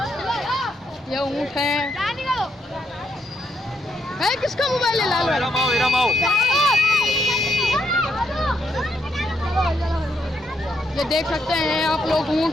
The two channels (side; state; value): both; normal; correlation 0.78